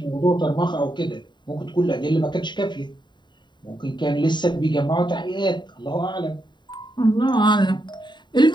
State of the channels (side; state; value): right; late; 0.22 ms